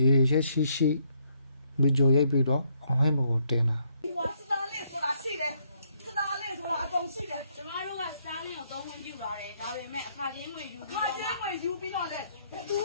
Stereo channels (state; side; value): inverted; both; correlation -0.72